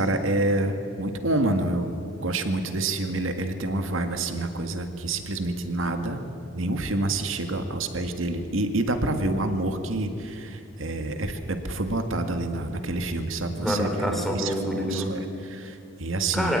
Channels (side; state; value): both; normal; correlation 0.47